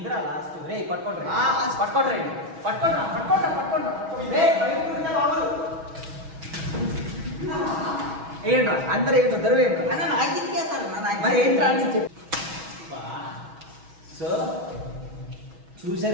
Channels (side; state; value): left; late; 6.2 ms